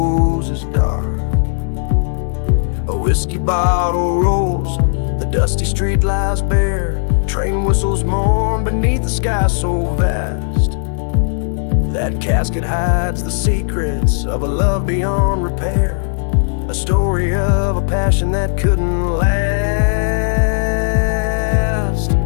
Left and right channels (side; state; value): right; silent; digital silence